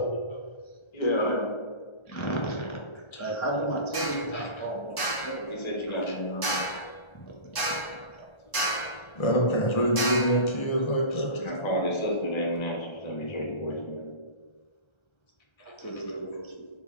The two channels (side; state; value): right; late; 1.3 ms